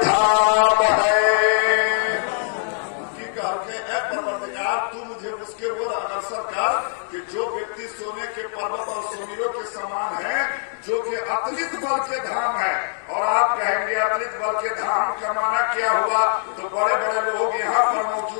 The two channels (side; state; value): right; silent; 64 dB below the other